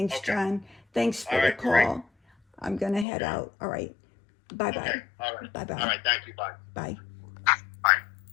Okay. John. Thanks for the call. Great. I'm gonna head out. All right. Bye bye. Okay. All right. Bye bye. All right. Thank you. Bye. Bye. Bye.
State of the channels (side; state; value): right; drops out; at 3.1 s